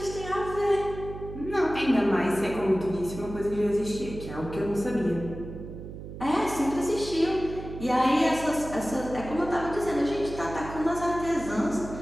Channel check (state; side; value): noise; right; hum, 11 dB below the sound